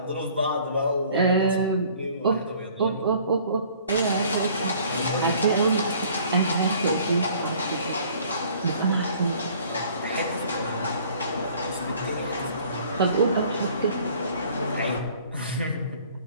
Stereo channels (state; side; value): inverted; both; correlation -0.54